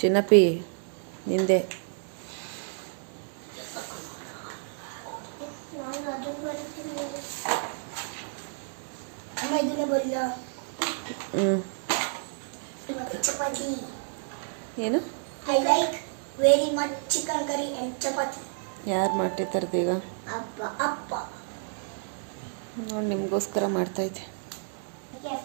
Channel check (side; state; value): left; silent; 58 dB below the other